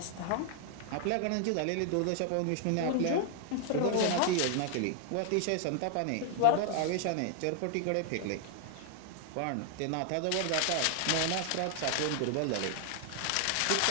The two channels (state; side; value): different; both; correlation 0.00